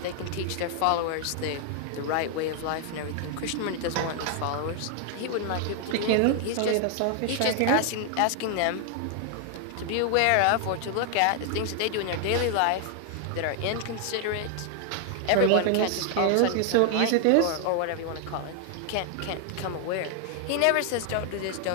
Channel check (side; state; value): both; different; correlation 0.00